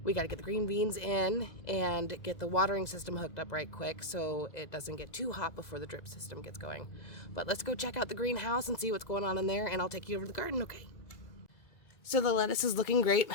We got to get the green beans in and get the watering system hooked up right quick so it doesn't get too hot before the drip system gets going. But let's go check out the greenhouse and see what's going on in there, and I'll take you over to the garden, okay? So the lettuce is looking great,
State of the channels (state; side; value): late; right; 2.0 ms